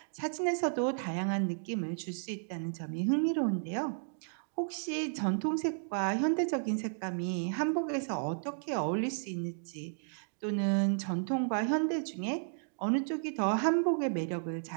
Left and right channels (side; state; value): left; silent; digital silence